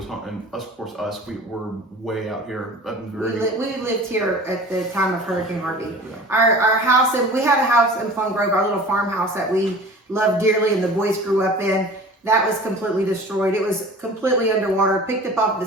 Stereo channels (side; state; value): both; normal; correlation 0.41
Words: home, and of course us. We were way out here. we lived here at the time of Hurricane Harvey. Our house, and we had a house in Plum Grove, our little farmhouse that we loved dearly, and the boys grew up in. That was completely destroyed. It was completely underwater. Picked up off